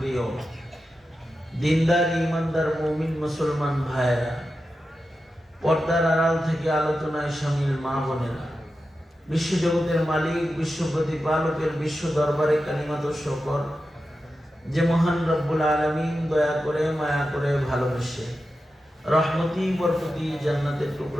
দিনদার ইমানদার মুমিন মুসলমান ভাইয়েরা, পর্দার আড়াল থেকে আলোচনায় শামিল মা বোনেরা, বিশ্বজগতের মালিক, বিশ্ব প্রতিপালকের বিশ্ব দরবারে কালিমাত শকর যে মহান রব্বুল আলামিন দয়া করে, মায়া করে, ভালোবেসে রহমতি বরকতি জান্নাতের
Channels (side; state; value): both; normal; correlation 0.91